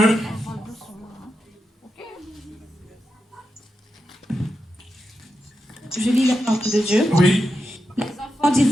Je lis la parole de Dieu. Oui. Les enfants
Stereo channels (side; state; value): both; normal; correlation 0.88